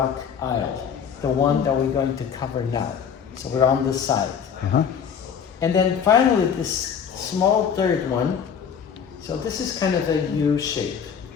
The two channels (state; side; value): quieter; right; 7.4 dB